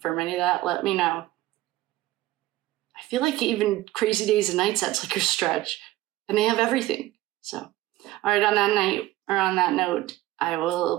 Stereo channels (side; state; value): left; quieter; 16.4 dB